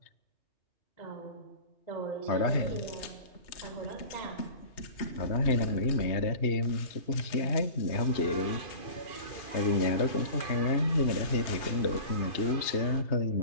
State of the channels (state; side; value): late; right; 3.2 ms